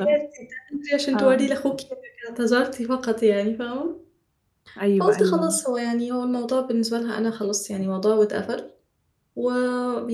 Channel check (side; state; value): both; identical; correlation 1.00